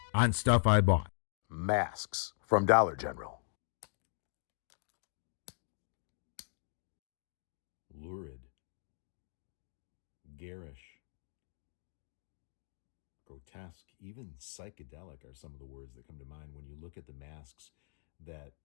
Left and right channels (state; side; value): silent; right; digital silence